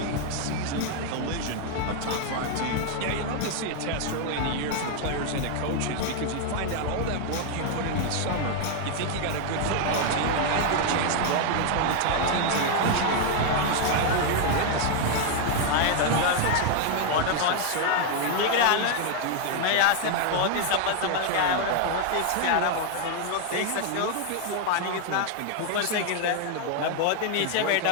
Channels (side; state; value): both; different; correlation 0.00